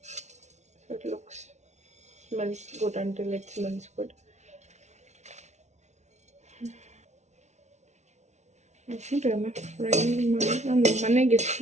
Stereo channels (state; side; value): late; left; 0.33 ms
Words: So it looks smells good until it smells good. Fry ಮಾಡಿ ನಾನು ಮನೆಗೆ